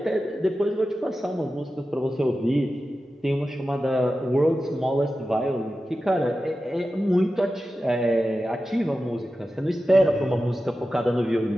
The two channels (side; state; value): both; normal; correlation 0.93